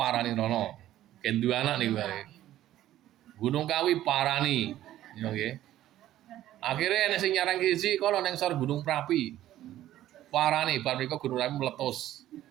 rono. Ken duwe anak niku wae. Gunung Kawi parani, nggih. Akhirnya nek sing nyarang siji kono ning sor Gunung Prapi. Parani bar mriko Gunung Prapi meletus.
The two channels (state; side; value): quieter; left; 13.4 dB